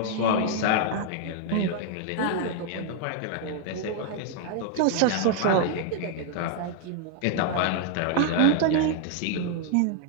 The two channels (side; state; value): both; different; correlation 0.00